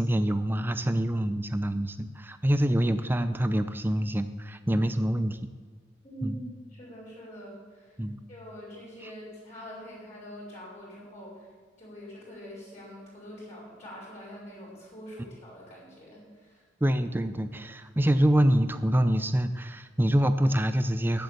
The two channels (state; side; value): normal; both; correlation 0.95